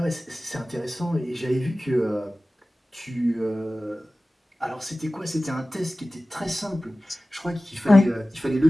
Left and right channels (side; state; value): both; normal; correlation 0.96